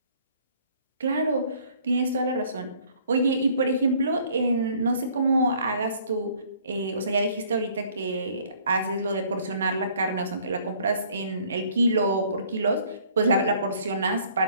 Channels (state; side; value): inverted; both; correlation -0.59